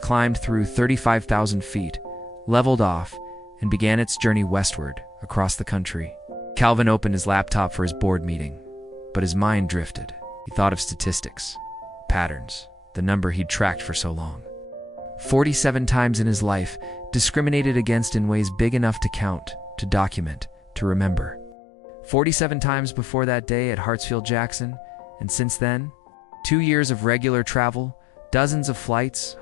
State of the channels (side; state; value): right; drops out; at 21.6 s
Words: climbed through 35,000 feet, leveled off, and began its journey westward, across the country. Calvin opened his laptop for his board meeting, but his mind drifted. He thought of statistics, patterns, the number he'd tracked for so long. 47 times in his life, discriminated against in ways big enough to count, to document, to remember. 47 times before that day at Hartsfield-Jackson, and since then, 2 years of regular travel, dozens of flights,